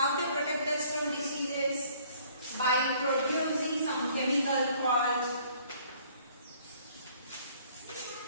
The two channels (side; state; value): both; inverted; correlation -0.59